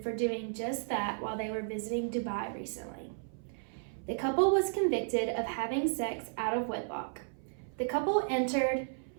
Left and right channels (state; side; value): silent; left; 55 dB below the other